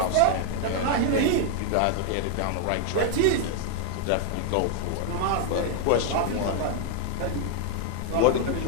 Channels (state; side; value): different; both; correlation 0.00